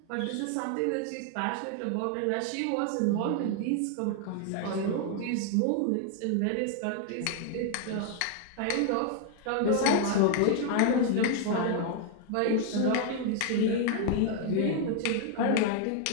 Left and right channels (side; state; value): both; different; correlation 0.00